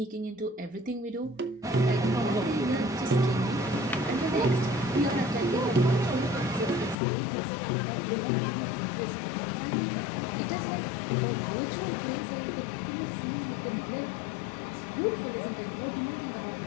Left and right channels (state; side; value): drops out; right; at 7.0 s